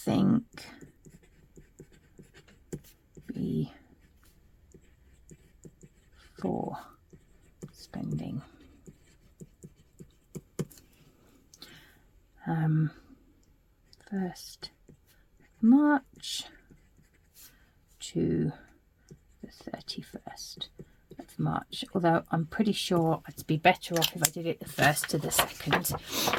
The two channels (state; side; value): identical; both; correlation 1.00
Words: before spending. 1st March to the 31st of March, although I'm pretty sure I'd be better off if I did it the 1st to the 2nd.